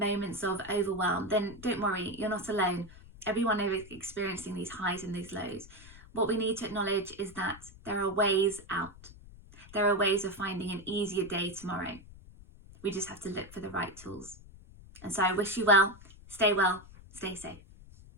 of overwhelm, then don't worry, you're not alone. Everyone is experiencing these highs and these lows. What we need to acknowledge is that there are ways out. There are ways of finding an easier day tomorrow. We just have to look for the right tools. And so I wish you well, stay safe.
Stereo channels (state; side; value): noise; left; rumble, 20 dB below the sound